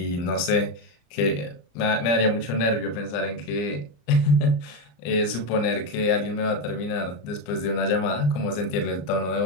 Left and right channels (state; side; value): late; right; 34 ms